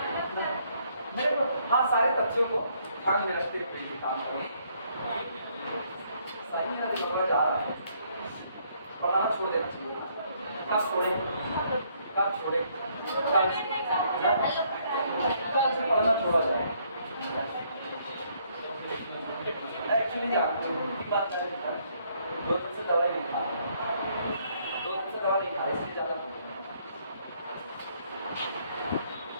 मेरे को, हाँ सारे तथ्यों को ध्यान में रखते हुए काम करो। सही है ना? जा रहा है, पढ़ाना छोड़ देना चाहिए। कब छोड़े? कब छोड़े? कल से पढ़ना छोड़ा जाए। एक्चुअली बात करें, 2 दिन से दवाई नहीं खा, 2 दिन से दवा नहीं खा, इसलिए ज़्यादा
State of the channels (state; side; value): inverted; both; correlation -0.68